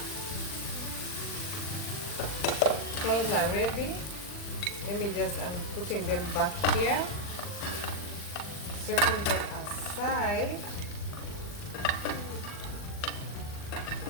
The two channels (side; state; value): right; late; 40 ms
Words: prawns are ready. I'm putting them back here, setting them aside.